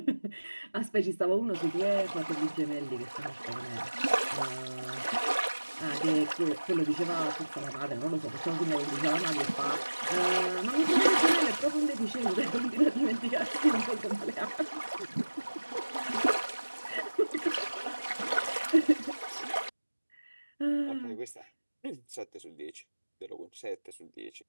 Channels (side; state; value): both; inverted; correlation -1.00